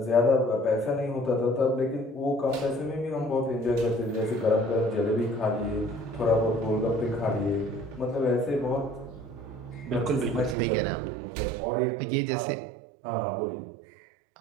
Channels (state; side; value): drops out; left; at 10.6 s